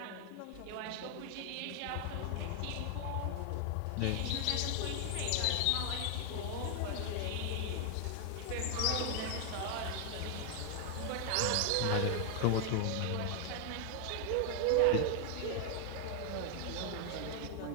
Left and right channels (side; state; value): both; different; correlation 0.00